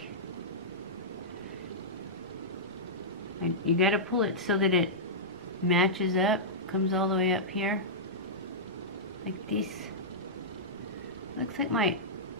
you gotta pull it so that it matches up, comes all the way up here, like this. Looks like my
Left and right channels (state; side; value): normal; both; correlation -0.13